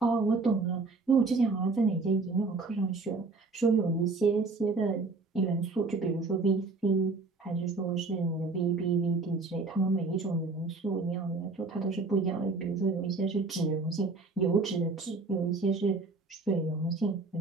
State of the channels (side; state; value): left; quieter; 3.7 dB